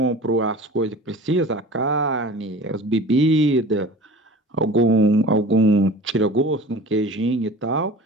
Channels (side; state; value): both; normal; correlation 0.40